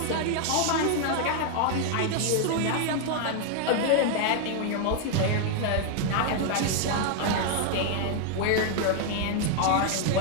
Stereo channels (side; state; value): both; different; correlation 0.00